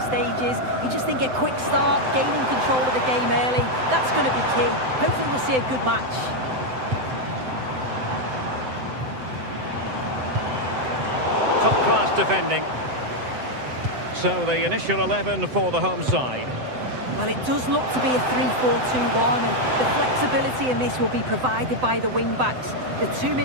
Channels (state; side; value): late; left; 7.8 ms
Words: stages. You just think a quick start, gaining control of the game early, that's going to be key. Hopefully we'll see a good match. Top-class defending. So the initial 11 for the home side. Well, it does look to be a 3-4-2-1, and the flexibility in this will be provided by the wing-backs. The two